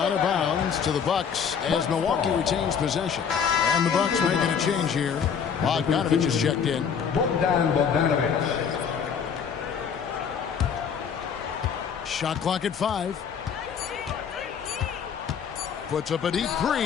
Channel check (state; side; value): quieter; right; 7.1 dB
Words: of bounds to the Bucks as Milwaukee retains possession. And the Bucks making a change here. Bogdanovich is checked in. Bogdanovich. Shot clock at 5. Puts up a deep